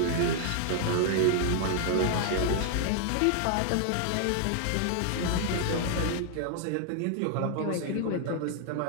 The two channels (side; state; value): both; different; correlation 0.00